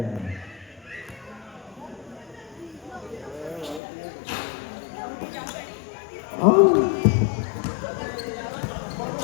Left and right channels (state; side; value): drops out; right; at 3.8 s